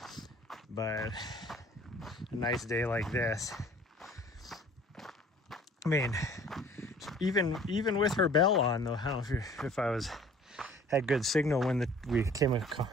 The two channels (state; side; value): normal; both; correlation 0.51